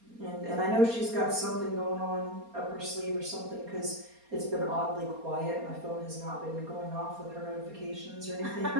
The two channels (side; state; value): left; late; 4.3 ms